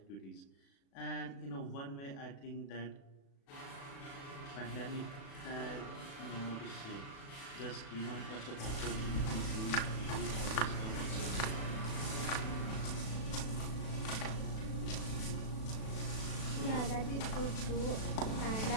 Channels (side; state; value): right; late; 36 ms